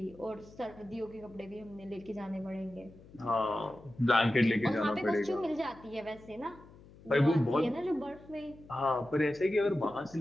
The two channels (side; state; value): left; noise; hum, 22 dB below the sound